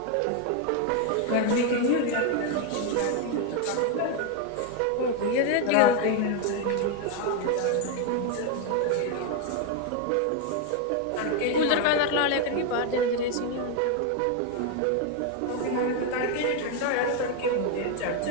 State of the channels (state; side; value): different; both; correlation 0.01